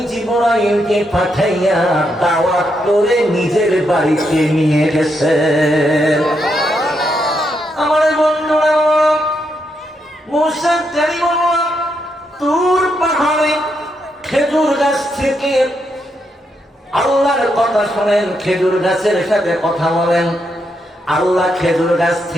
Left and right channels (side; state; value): both; normal; correlation 0.80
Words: জিবরাইলকে পাঠাইয়া দাওয়াত করে নিজের বাড়িতে নিয়ে গেছেন। আমার বন্ধুরা, মুসা কালিমুল্লাহ তুর পাহাড়ে খেজুর গাছ থেকে আল্লাহর কথা শোনেন, খেজুর গাছের সাথে কথা বলেন। আল্লাহ খেজুর গাছ